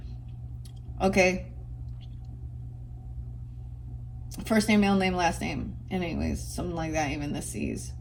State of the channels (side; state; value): both; identical; correlation 1.00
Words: Okay. First name, middle name, last name. Anyways, something like that, even the C's.